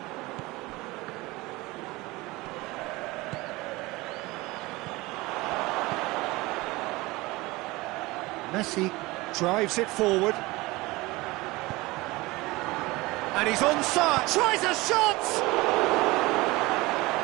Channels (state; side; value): quieter; left; 21.6 dB